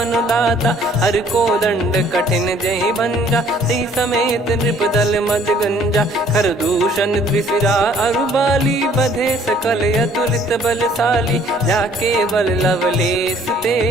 दाता। हर को दंड कठिन जहि भंजा, ती समेत नृपदल मद गंजा। खर दूषण त्रिशिरा अरुबाली, बधे सकल अतुलित बलशाली। जाके बल लवलेस ते,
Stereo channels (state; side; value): normal; both; correlation 0.58